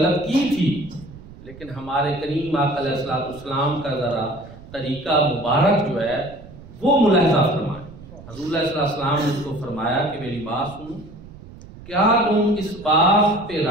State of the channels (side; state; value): right; noise; rumble, 18 dB below the sound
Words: کی تھی، لیکن ہمارے کریم آقا علیہ السلام کا ذرا طریقہ مبارک جو ہے وہ ملاحظہ فرمائے۔ حضور علیہ السلام نے اس کو فرمایا کہ میری بات سنو، کیا تم اس بات پہ